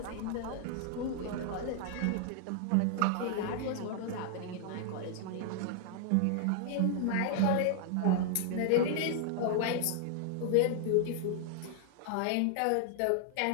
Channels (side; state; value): both; different; correlation 0.00